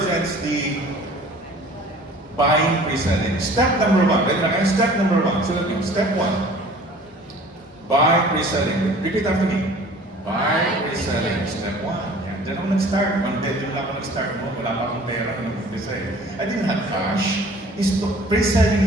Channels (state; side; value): normal; both; correlation 0.48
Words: the buying, pre-selling. Step number 1. Step number 1. So step 1. Buy, pre-selling. Repeat after me. Buy, pre-selling. Step 1. Diyan ako nag-start. One bedroom lang ako nag-start mo. Wala pa akong pera na nag-umpisa eh. I didn't have cash.